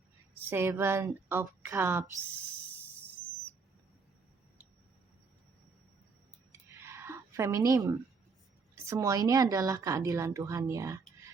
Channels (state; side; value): quieter; left; 4.7 dB